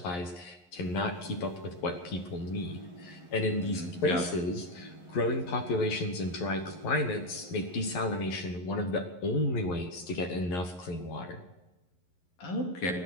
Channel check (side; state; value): right; late; 11 ms